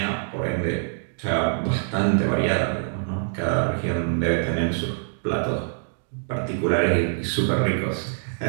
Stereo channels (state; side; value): silent; left; digital silence